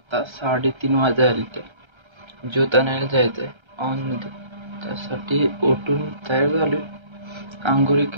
3:30 वाजले ते ज्योत आणायला जायचं आहे ऑनमध्ये. त्यासाठी उठून तयार झालो, आंघोळी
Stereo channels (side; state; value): left; late; 1.3 ms